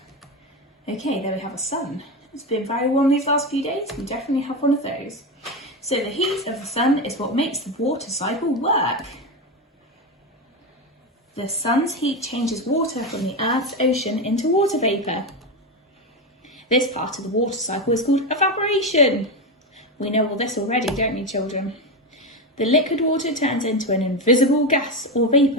Okay, there we have a sun. It's been very warm these last few days. We definitely have one of those. So the heat of the sun is what makes the water cycle work. The sun's heat changes water from the Earth's ocean into water vapour. This part of the water cycle is called evaporation. We know all this already, don't we, children? The liquid water turns into an invisible gas or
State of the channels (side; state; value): both; normal; correlation 0.14